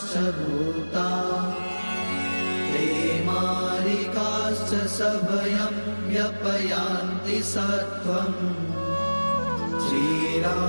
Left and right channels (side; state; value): both; inverted; correlation -1.00